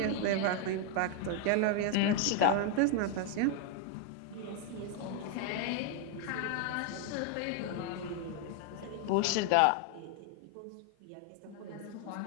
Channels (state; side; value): different; both; correlation 0.00